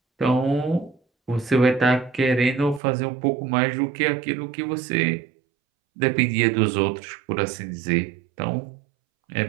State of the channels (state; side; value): drops out; left; at 2.8 s